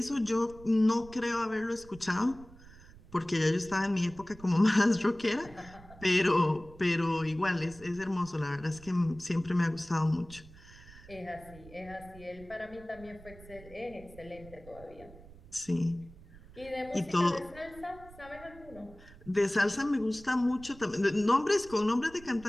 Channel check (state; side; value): noise; right; rumble, 20 dB below the sound